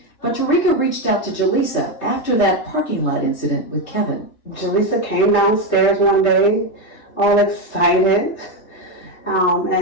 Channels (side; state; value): right; late; 3.3 ms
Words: But Tarika reached out to Jaleesa after that parking lot incident with Kevin. Jaleesa came downstairs one day, all excited,